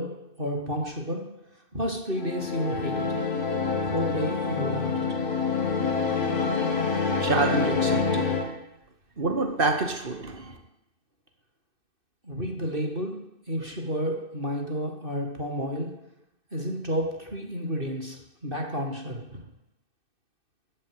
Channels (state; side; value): late; left; 2.6 ms